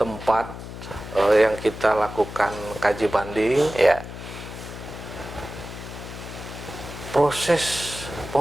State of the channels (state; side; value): noise; left; hum, 11 dB below the sound